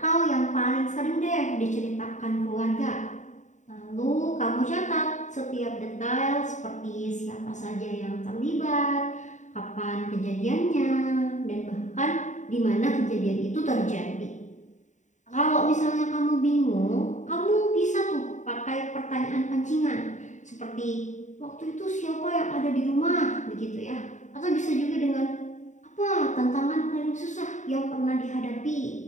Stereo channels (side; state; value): right; late; 0.35 ms